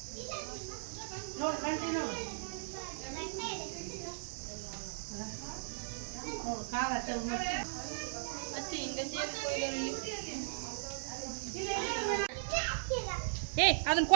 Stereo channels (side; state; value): left; silent; digital silence